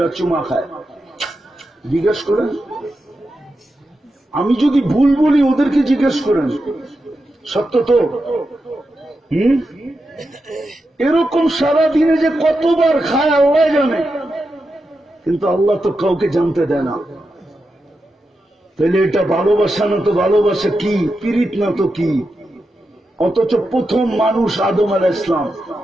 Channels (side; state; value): both; normal; correlation 0.88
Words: চুমা খায়। জিজ্ঞেস করেন, আমি যদি ভুল বলি ওদেরকে জিজ্ঞেস করেন, সত্য তো? এরকম সারাদিনে যে কতবার খায় আল্লাহ জানে, কিন্তু আল্লাহ তো কাউকে জানতে দেয় না। তাহলে এটা ভালোবাসা না তো ভালোবাসা কি? পীড়িত না তো কি? অথচ প্রথম মানুষ আদম আলাইহিস সালাম,